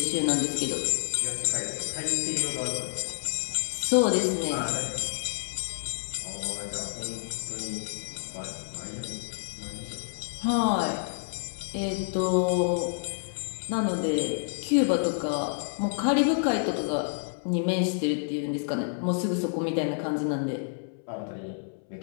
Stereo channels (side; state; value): right; silent; 59 dB below the other